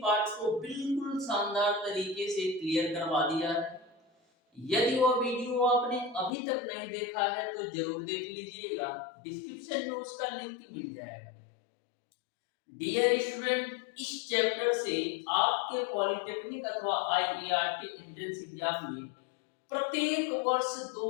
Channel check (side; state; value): right; drops out; at 6.3 s